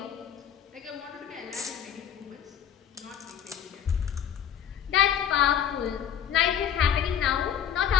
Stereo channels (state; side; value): quieter; right; 9.0 dB